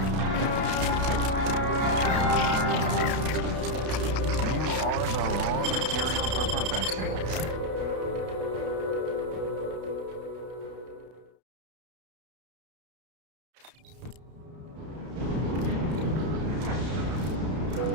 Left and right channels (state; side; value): late; left; 32 ms